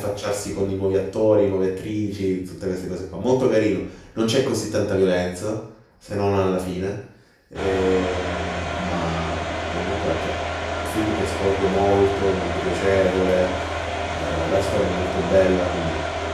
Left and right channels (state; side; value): identical; both; correlation 1.00